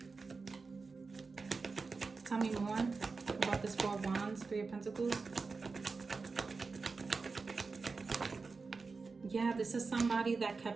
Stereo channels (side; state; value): left; quieter; 4.3 dB